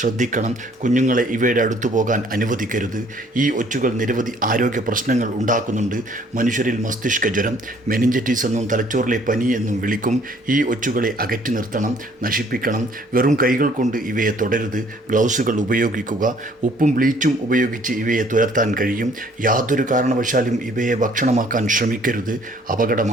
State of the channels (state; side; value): normal; both; correlation 0.59